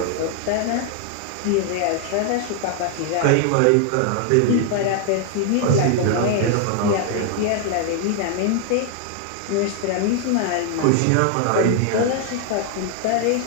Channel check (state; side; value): different; both; correlation 0.00